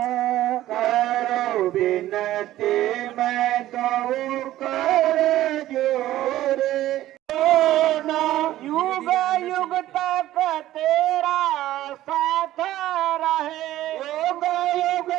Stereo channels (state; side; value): quieter; left; 14.3 dB